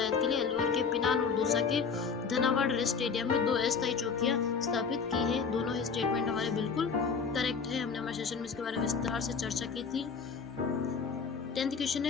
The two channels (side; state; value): right; quieter; 5.7 dB